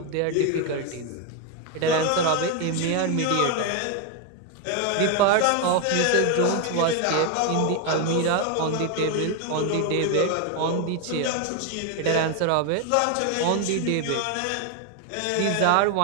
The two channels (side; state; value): both; different; correlation 0.01